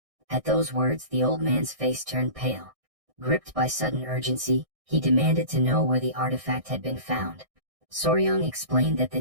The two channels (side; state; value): left; late; 1.6 ms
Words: At those words, the old man's face turned pale. Gripped by sudden urgency, he demanded to know where the artifact had been found. Soryang explained that